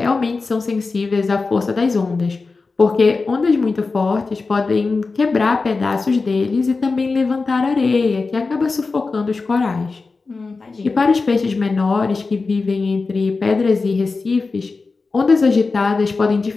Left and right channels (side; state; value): right; quieter; 4.1 dB